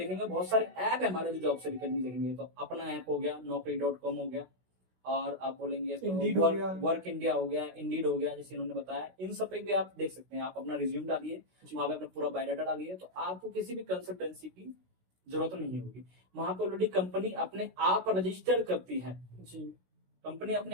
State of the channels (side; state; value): left; late; 16 ms